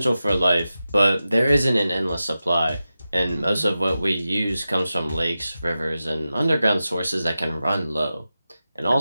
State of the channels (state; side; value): inverted; both; correlation -0.93